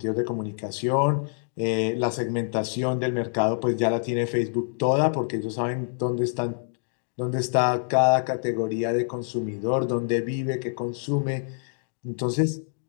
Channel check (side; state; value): right; silent; digital silence